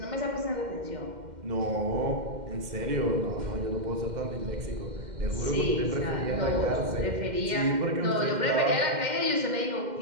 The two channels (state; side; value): late; left; 2.1 ms